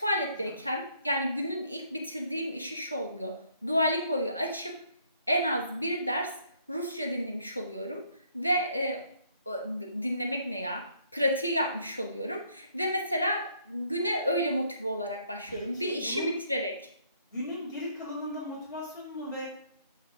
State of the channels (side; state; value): both; inverted; correlation -0.67